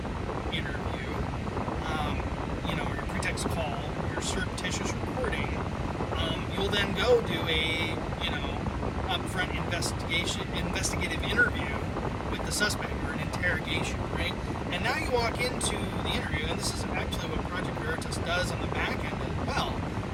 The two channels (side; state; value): both; identical; correlation 1.00